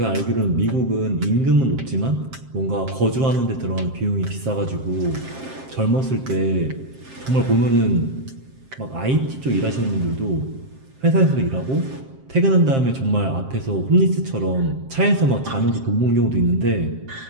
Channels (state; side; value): late; left; 7.6 ms